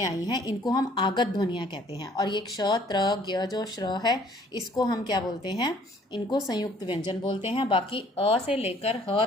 आई हैं, इनको हम आगत ध्वनियाँ कहते हैं। और ये क्ष त्र ज्ञ जो श्र है इसको हम क्या बोलते हैं? इनको संयुक्त व्यंजन बोलते हैं। बाकी अ से लेकर ह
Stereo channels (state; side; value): normal; both; correlation 0.58